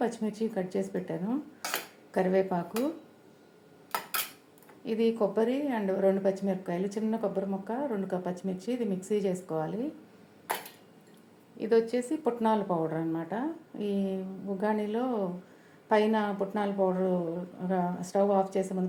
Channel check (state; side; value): identical; both; correlation 1.00